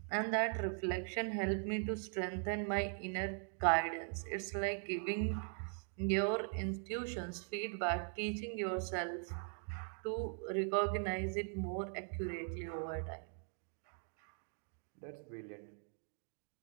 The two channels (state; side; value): silent; left; 51 dB below the other